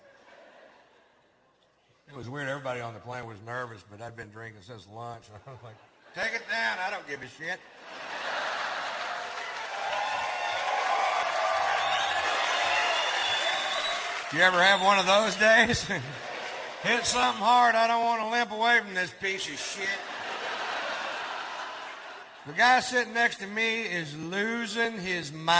It was weird. Everybody on the plane was nervous, but I'd been drinking since lunch. I was like, "Take it down. I don't give a shit." You ever have one of those days? Hit something hard. I don't want to limp away from this piece of shit. The guy sitting next to me is losing his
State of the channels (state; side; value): identical; both; correlation 1.00